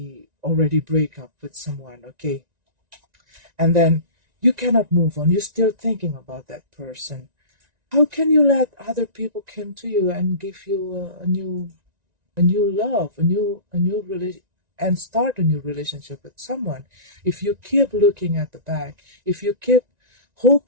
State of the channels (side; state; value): left; late; 1.9 ms